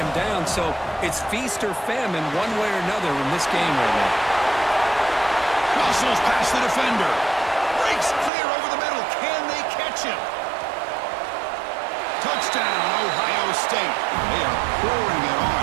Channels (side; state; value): left; drops out; at 8.3 s